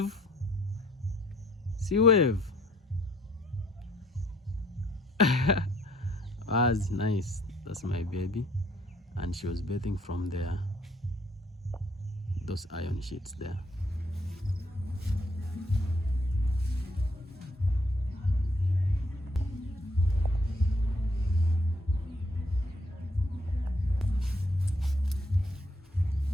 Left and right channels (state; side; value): normal; both; correlation 0.66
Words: See, wave. That's nice. That's my baby. And she was bathing from there. Those iron sheets there.